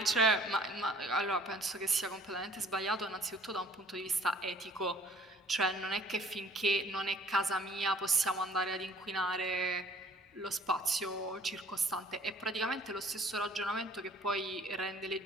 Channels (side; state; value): both; normal; correlation 0.54